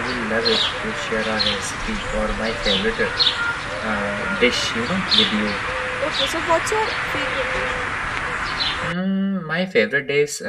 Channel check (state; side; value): identical; both; correlation 1.00